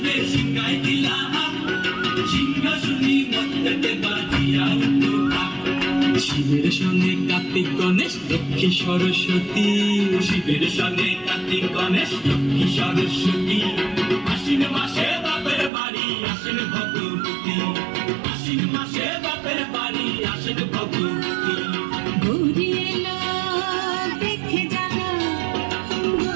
শিবের সঙ্গে কার্তিক গণেশ লক্ষ্মী সরস্বতী, শিবের সঙ্গে কার্তিক গণেশ লক্ষ্মী সরস্বতী। আশ্বিন মাসে বাপের বাড়ি আসেন ভগবতী, আশ্বিন মাসে বাপের বাড়ি আসেন ভগবতী। গৌরী এলো দেখে জানো,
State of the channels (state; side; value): drops out; left; at 15.7 s